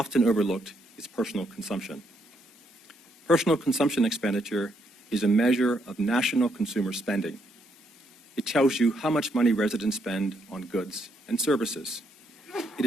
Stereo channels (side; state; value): both; normal; correlation 0.75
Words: overlooked is personal consumption. Personal consumption expenditure is a measure of national consumer spending. It tells you how much money residents spend on goods and services. It